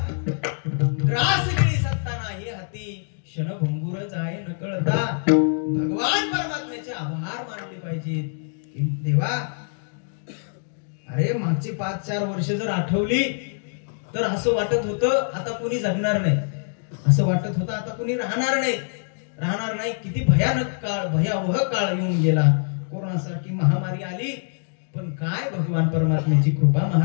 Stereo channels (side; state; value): right; silent; digital silence